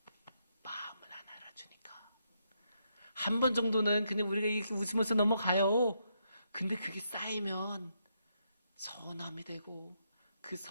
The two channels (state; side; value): inverted; both; correlation -0.79